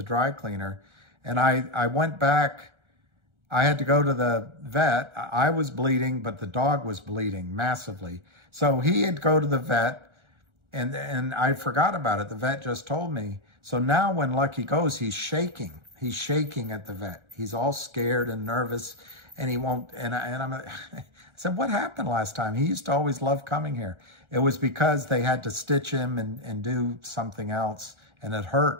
dry cleaner. And I went back. I had to go to the vet. I was bleeding, but the dog was bleeding massively. So he had to go to the vet, and I forgot about it. The vet just told me. So now when Lucky goes, he's shaking. He's shaking at the vet. He's all scared and nervous, and he won't. And I said, what happened last time? He used to always love coming here. It was because they had to stitch him and do something else, and it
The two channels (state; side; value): late; left; 1.4 ms